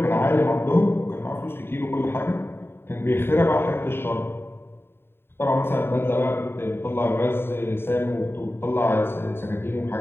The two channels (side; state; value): right; late; 0.11 ms